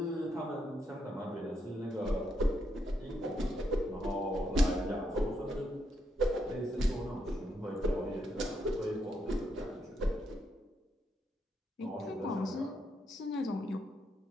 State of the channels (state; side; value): normal; both; correlation 0.79